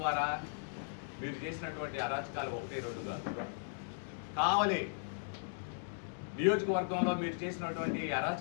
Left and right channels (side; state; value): right; silent; digital silence